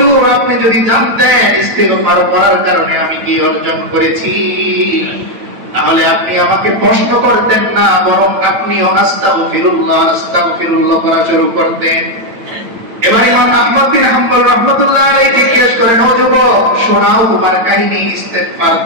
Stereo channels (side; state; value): left; late; 9.0 ms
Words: আপনি যদি জানতেন ইস্তিগফার করার কারণে আমি কি অর্জন করেছি, তাহলে আপনি আমাকে প্রশ্ন করতেন না, বরং আপনিও আস্তাগফিরুল্লাহ আস্তাগফিরুল্লাহ করা শুরু করতেন। এবার ইমাম আহমদ বিন হাম্বল রাহমাতুল্লাহ আলাইহি জিজ্ঞেস করেন, ও যুবক শোনাও তোমার কাহিনী, ইস্তেগফার